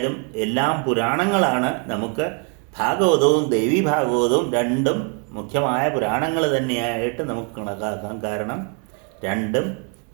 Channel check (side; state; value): left; quieter; 38.8 dB